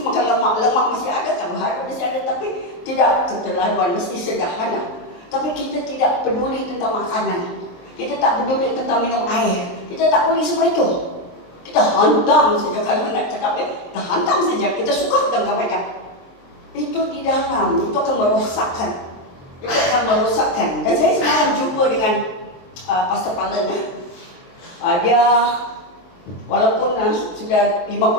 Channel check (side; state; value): right; late; 23 ms